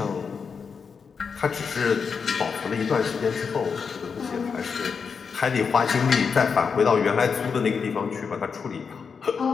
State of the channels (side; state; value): right; quieter; 5.8 dB